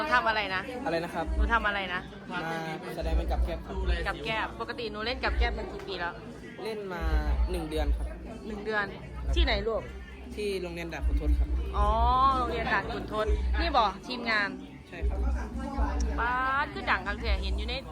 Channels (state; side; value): identical; both; correlation 1.00